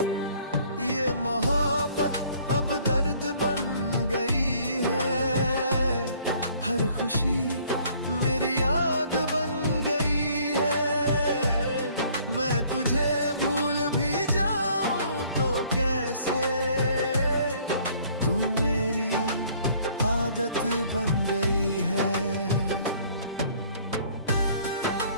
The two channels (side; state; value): both; inverted; correlation -0.59